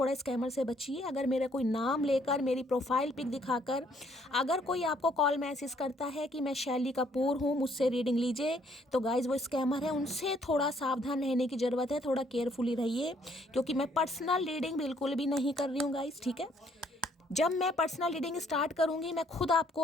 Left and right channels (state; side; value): normal; both; correlation 0.66